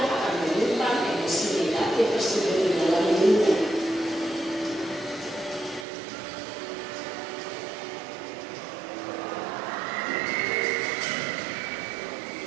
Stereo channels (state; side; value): drops out; left; at 5.9 s